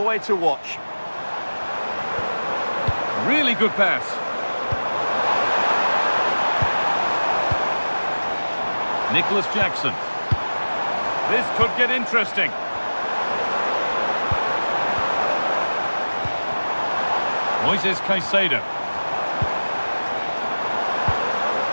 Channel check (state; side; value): inverted; both; correlation -1.00